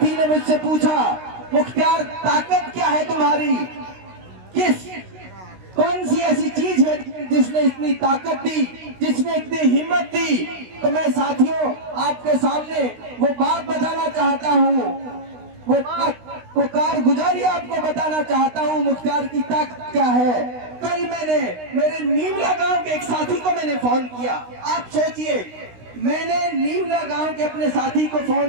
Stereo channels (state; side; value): late; left; 16 ms